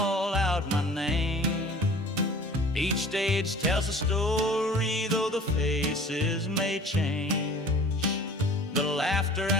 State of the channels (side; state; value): both; normal; correlation 0.46